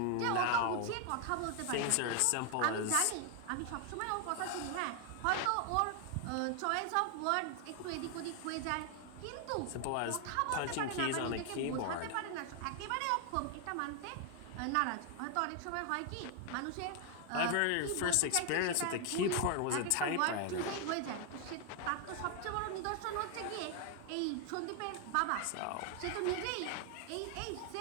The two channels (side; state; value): both; different; correlation 0.00